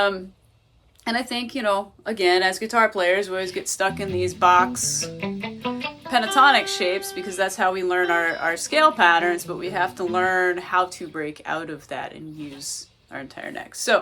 I think, again, as guitar players, we always get stuck in these box pentatonic shapes because that's how we learn our scale patterns, but we have to learn how to break out of that and use our entire neck.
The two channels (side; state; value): both; identical; correlation 1.00